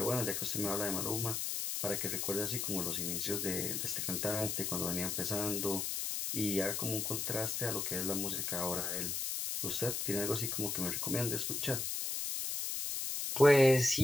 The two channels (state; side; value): noise; left; hiss, 1 dB below the sound